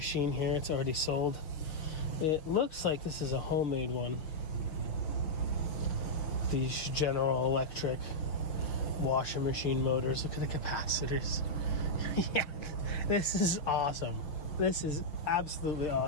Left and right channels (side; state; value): right; late; 6.1 ms